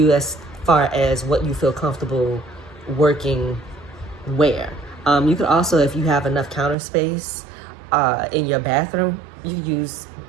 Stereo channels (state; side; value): drops out; left; at 6.8 s